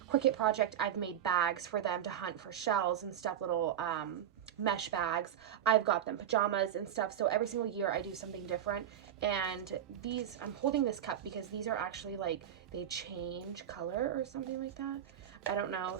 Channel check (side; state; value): left; quieter; 10.1 dB